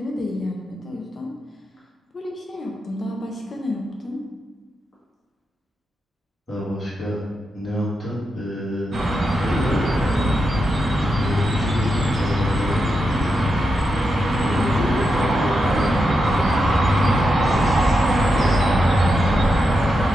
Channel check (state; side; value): normal; both; correlation 0.86